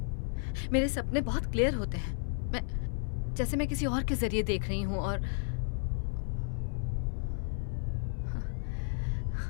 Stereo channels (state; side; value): silent; right; 56 dB below the other